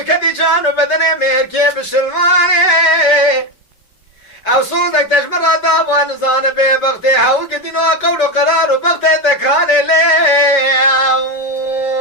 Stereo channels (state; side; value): late; right; 5.2 ms